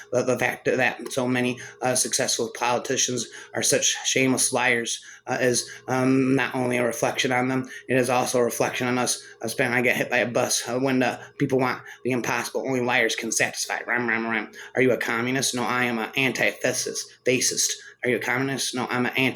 The fact that so many successful politicians are such shameless liars is not only a reflection on them, it is also a reflection on us. I get hit by a bus when the people want the impossible. Only liars can satisfy. Rhyme. Are you a communist? No, I am an anti-fascist. Are you a communist? No, I'm an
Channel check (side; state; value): both; identical; correlation 1.00